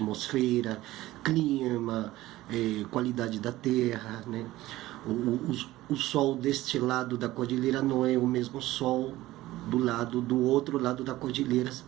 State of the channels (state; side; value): quieter; left; 16.7 dB